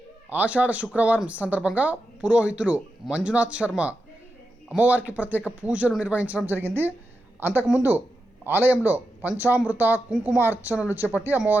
ఆషాఢ శుక్రవారం సందర్భంగా పురోహితులు మంజునాథ్ శర్మ అమ్మవారికి ప్రత్యేక పూజలు నిర్వహించడం జరిగింది. అంతకుముందు ఆలయంలో పంచామృత కుంకుమ అర్చనలు చేపట్టి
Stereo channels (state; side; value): normal; both; correlation 0.88